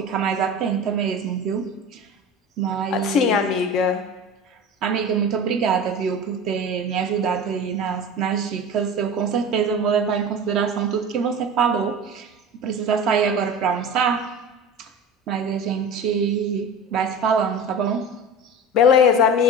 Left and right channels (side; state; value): both; normal; correlation 0.33